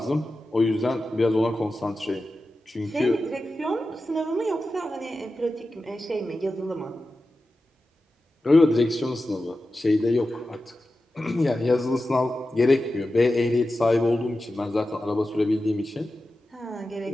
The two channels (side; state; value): both; normal; correlation 0.93